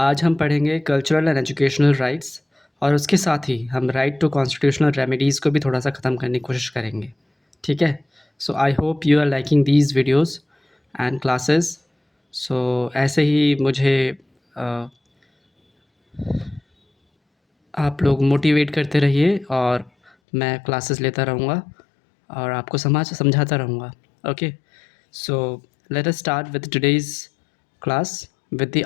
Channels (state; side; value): drops out; right; at 20.1 s